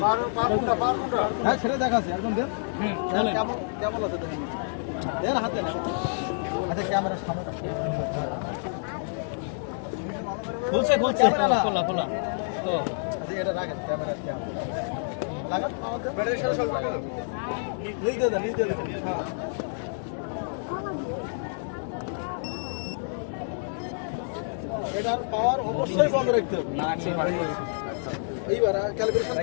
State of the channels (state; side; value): silent; right; digital silence